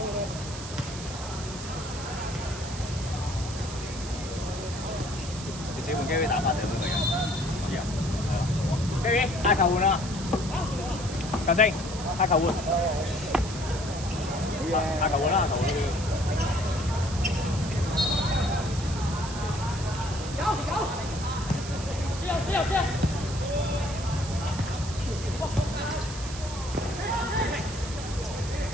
你自己換機會打翻定都得嘅。知啊。機會，嗌球換啦！球證，嗌球換。嗌球換啦！球換。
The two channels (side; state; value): right; noise; hiss, 11 dB below the sound